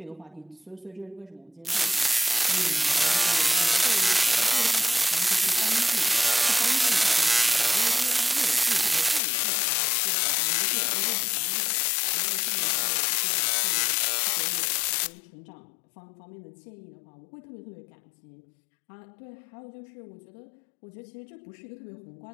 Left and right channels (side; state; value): right; drops out; at 9.2 s